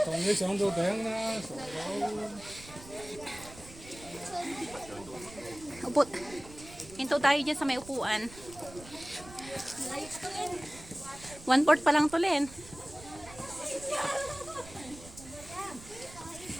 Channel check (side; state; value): right; noise; rumble, 17 dB below the sound